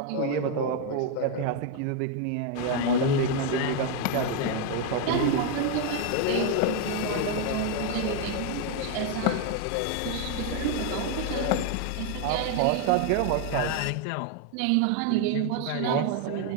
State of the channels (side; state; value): both; different; correlation 0.01